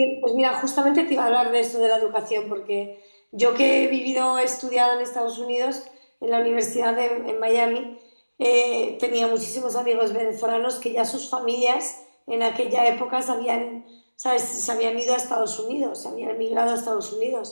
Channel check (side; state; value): both; inverted; correlation -1.00